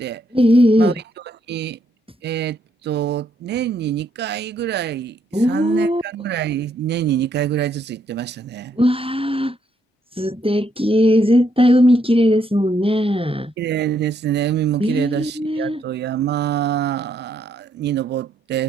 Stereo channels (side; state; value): both; normal; correlation 0.74